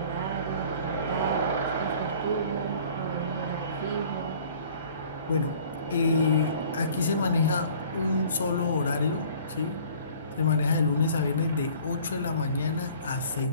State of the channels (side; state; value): both; inverted; correlation -0.51